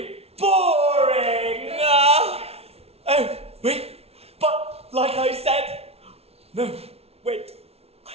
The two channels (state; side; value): late; left; 0.30 ms